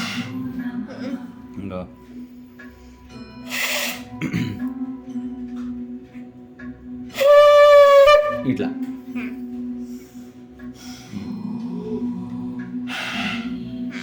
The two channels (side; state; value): both; identical; correlation 1.00